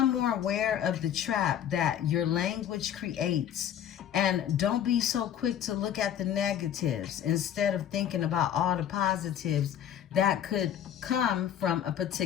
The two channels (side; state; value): right; quieter; 10.0 dB